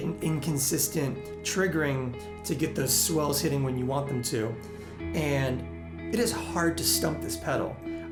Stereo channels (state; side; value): identical; both; correlation 1.00